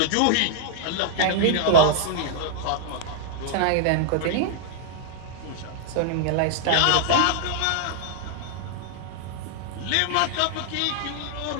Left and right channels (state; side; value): different; both; correlation -0.01